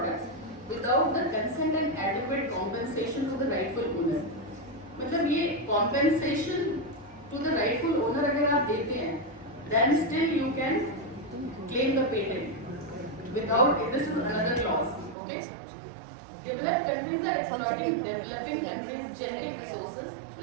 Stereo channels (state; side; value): drops out; left; at 15.2 s